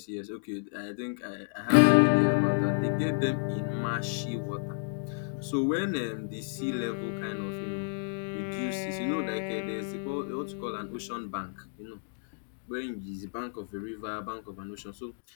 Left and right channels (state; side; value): silent; right; digital silence